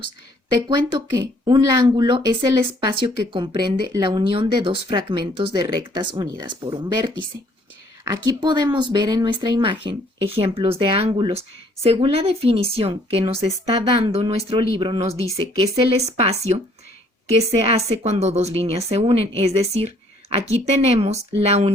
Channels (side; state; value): both; normal; correlation 0.62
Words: Te cuento que un ángulo es el espacio que comprende la unión de dos fragmentos de rectas unidas por un vértice. Aquí podemos ver en nuestra imagen ejemplos de ángulos. Según la definición que nos está dando nuestro libro, nos dice que es el espacio que se hace cuando dos líneas se unen. Es decir, aquí tenemos la